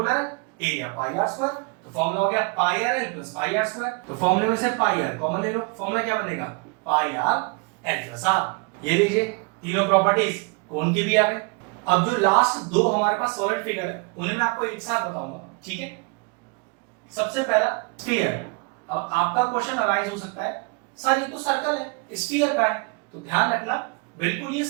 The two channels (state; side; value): quieter; left; 30.5 dB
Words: है, एरिया पाई आर स्क्वायर। तो फॉर्मूला हो गया pi r l plus pi r square. तो फॉर्मूले में से पाई आर कॉमन ले लो, फॉर्मूला क्या बनेगा पाई आर एल प्लस आर। ये लीजिए तीनों प्रॉपर्टीज कोन की भी आ गई। अब जो लास्ट दो हमारे पास सॉलिड फिगर है उन्हें मैं आपको एक साथ बताऊंगा, ठीक है। सबसे पहला स्फीयर। अब आपका क्वेश्चन अराइज हो सकता है सर ये तो सर्कल है, स्फीयर का है। तो ध्यान रखना बिल्कुल ये